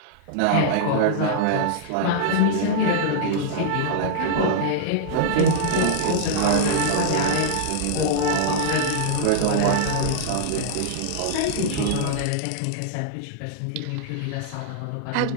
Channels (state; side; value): different; both; correlation -0.01